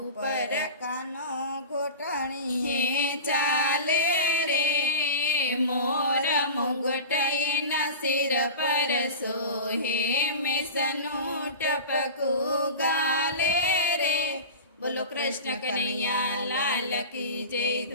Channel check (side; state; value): both; inverted; correlation -0.31